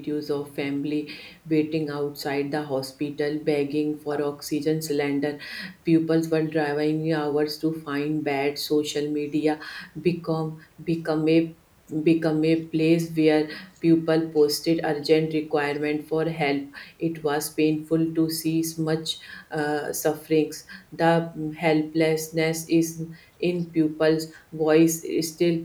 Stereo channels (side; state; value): both; identical; correlation 1.00